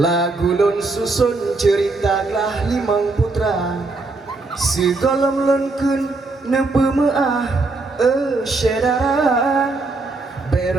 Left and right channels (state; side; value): quieter; left; 3.5 dB